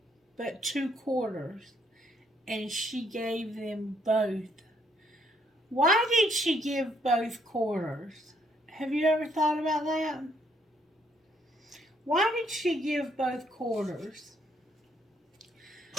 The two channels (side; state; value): both; normal; correlation 0.70